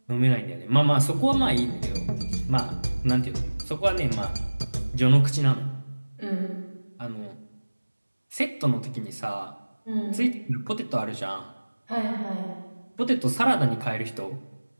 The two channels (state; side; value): inverted; both; correlation -1.00